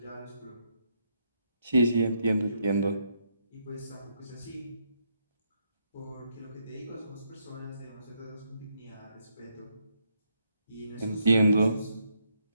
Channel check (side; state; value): both; inverted; correlation -0.77